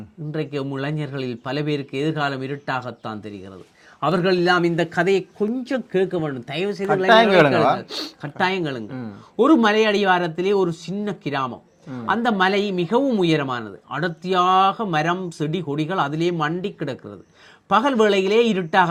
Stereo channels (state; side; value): identical; both; correlation 1.00